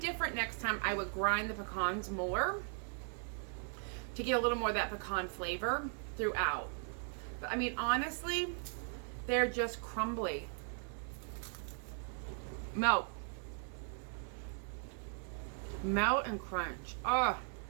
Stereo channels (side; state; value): left; silent; 52 dB below the other